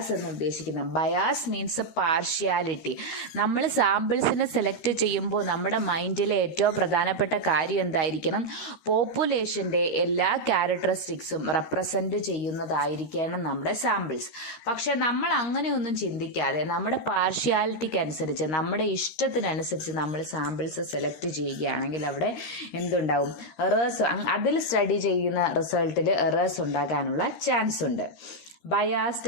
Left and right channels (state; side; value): late; right; 13 ms